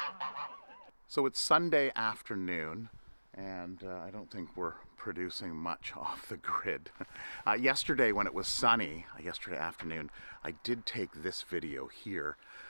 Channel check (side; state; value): both; inverted; correlation -1.00